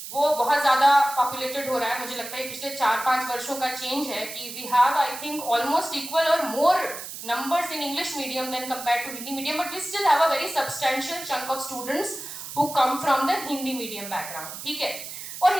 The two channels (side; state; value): right; noise; hiss, 10 dB below the sound